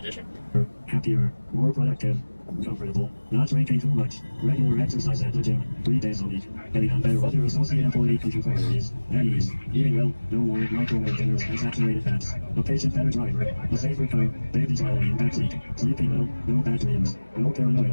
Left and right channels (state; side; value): inverted; both; correlation -1.00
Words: Happier, more productive, comfortable, not drinking too much, regular exercise at the gym, 3 days a week, getting on better with your associate employee contributories, at ease, eating well, no more microwave dinners and saturated fats, a patient better driver, a safer car, baby smiling in backseat, sleeping well, no bad dreams, no